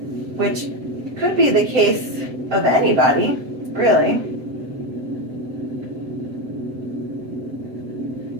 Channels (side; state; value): left; late; 7.8 ms